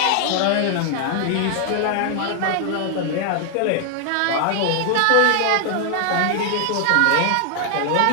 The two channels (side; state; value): both; different; correlation 0.00